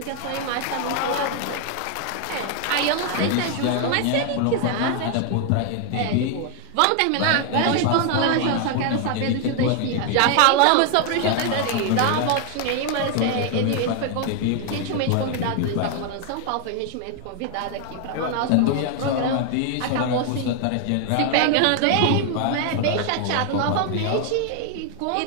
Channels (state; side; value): different; both; correlation 0.00